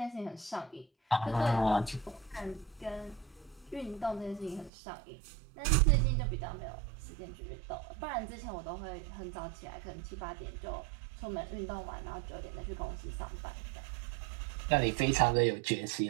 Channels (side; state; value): left; drops out; at 4.7 s